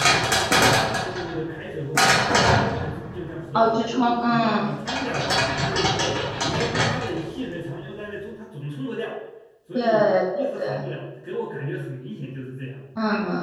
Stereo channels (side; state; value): both; identical; correlation 1.00